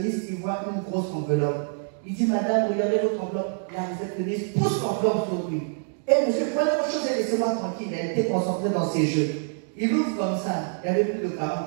il voit une grosse enveloppe. Il dit, madame, regardez votre enveloppe. La réceptionniste pousse l'enveloppe sur lui. Et monsieur, prenez vos choses et laissez-moi tranquille. Elle était concentrée dans ses jeux. Il ouvre comme ça. Il y avait plus de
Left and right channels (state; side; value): silent; left; 61 dB below the other